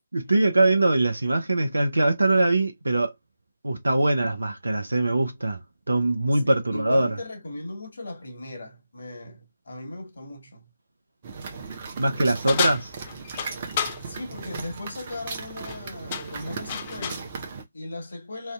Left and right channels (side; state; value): both; inverted; correlation -0.90